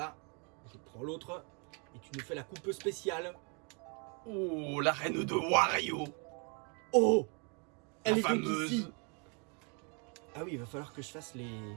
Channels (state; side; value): quieter; left; 35.1 dB